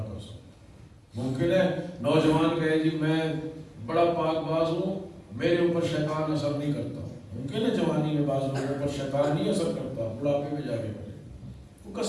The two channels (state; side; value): identical; both; correlation 1.00